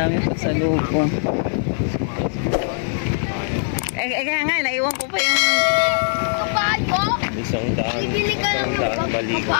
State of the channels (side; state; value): right; silent; 56 dB below the other